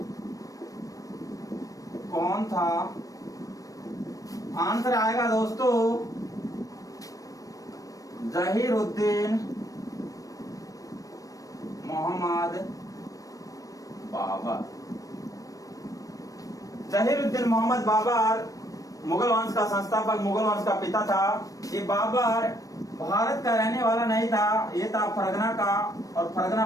कौन था? आंसर आएगा दोस्तों जहीरुद्दीन मोहम्मद बाबर। जहीरुद्दीन मोहम्मद बाबर मुगल वंश का संस्थापक, मुगल वंश का पिता था। ये बाबर भारत का रहने वाला नहीं था, ये था फरगना का, और फरगना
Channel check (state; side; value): late; right; 0.16 ms